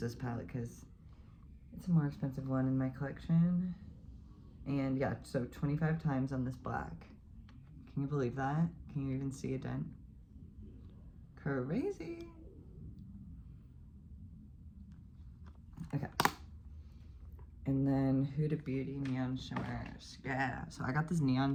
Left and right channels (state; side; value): identical; both; correlation 1.00